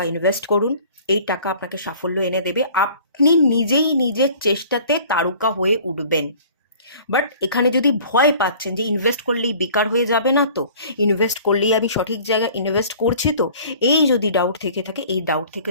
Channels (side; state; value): both; inverted; correlation -0.49